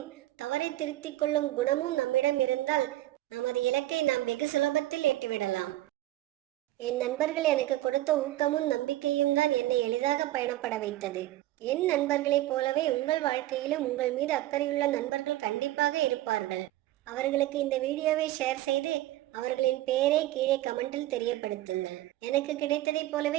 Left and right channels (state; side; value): quieter; left; 15.8 dB